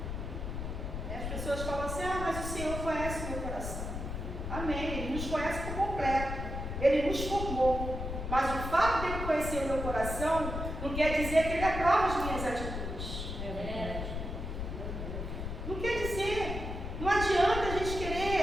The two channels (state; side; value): noise; left; rumble, 5 dB below the sound